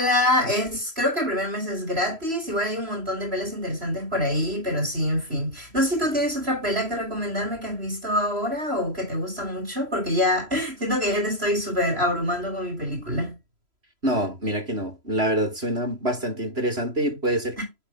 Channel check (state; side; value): late; left; 3.0 ms